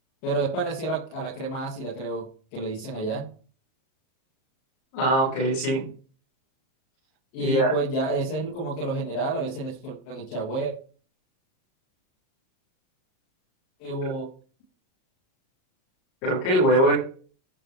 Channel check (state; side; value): late; right; 38 ms